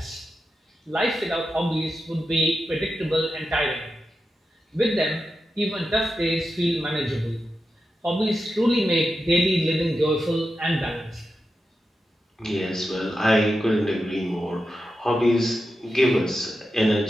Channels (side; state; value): both; normal; correlation 0.89